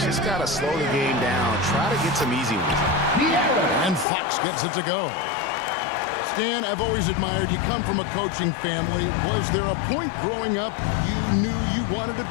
just got to slow the game down, try to get some easy ones. And Fox gets it to go. Stan, I've always admired you. Come from a coaching family. Was there a point growing up you knew you wanted to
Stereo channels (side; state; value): right; drops out; at 4.0 s